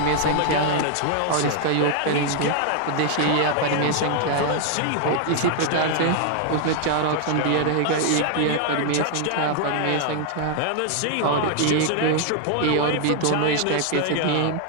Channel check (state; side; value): different; both; correlation 0.00